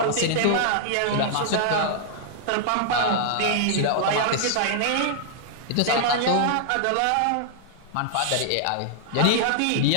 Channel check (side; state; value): both; different; correlation -0.01